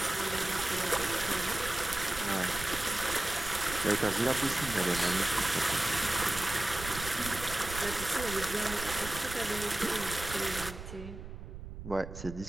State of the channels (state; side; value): noise; right; rumble, 11 dB below the sound